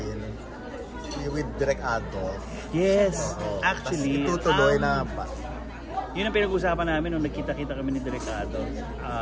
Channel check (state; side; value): identical; both; correlation 1.00